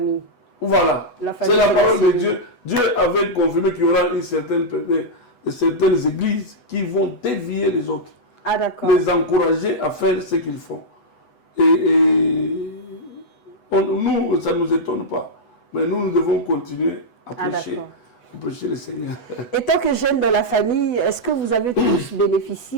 Voilà. C'est la parole de Dieu. Dieu avait confirmé qu'il y aura certaines églises qui vont dévier les autres. Ah, d'accord. Les encourager à faire ce qu'ils font. Et nous, ça ne nous étonne pas. Mais nous devons continuer à prêcher le Seigneur. Et tant que jeune dans la famille, est-ce que vous avez tous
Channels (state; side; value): late; right; 8.1 ms